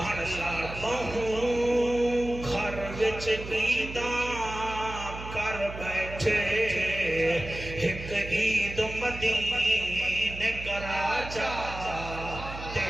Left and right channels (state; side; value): noise; right; hum, 10 dB below the sound